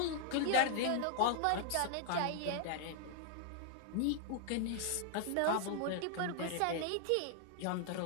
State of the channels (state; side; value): different; both; correlation 0.00